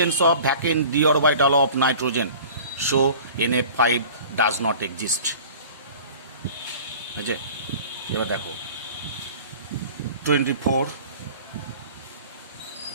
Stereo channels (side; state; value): both; inverted; correlation -0.43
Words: of vacant D orbital of nitrogen. So NF5 does not exist, বুঝছে? এবার দেখো 24,